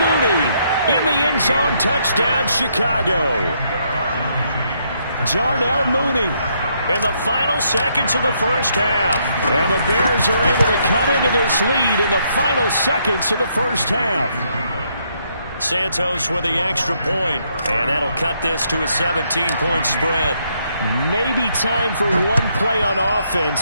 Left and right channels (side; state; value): both; inverted; correlation -0.73